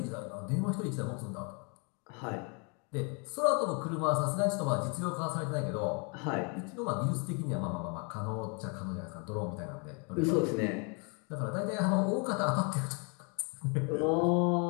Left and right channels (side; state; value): right; quieter; 35.1 dB